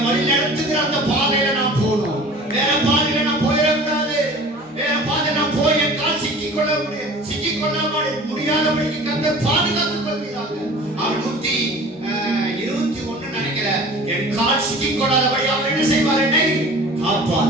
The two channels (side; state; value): both; normal; correlation 0.42